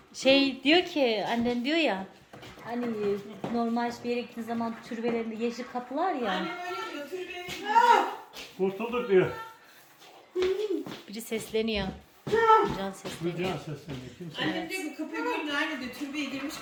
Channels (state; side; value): identical; both; correlation 1.00